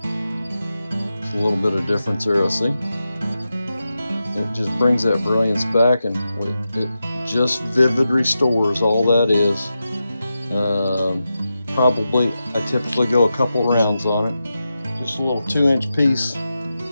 There's a little bit of difference there, I see. It just brings that brilliance back, and it just Vivid Restores, all that is. Probably, I typically go a couple rounds on it. Just a little 2-inch piece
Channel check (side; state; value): both; inverted; correlation -0.90